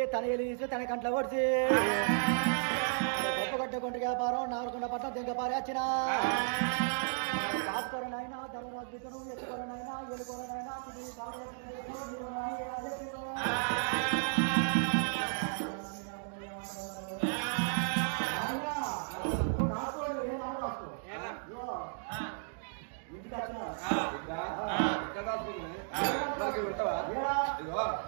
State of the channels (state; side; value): silent; left; digital silence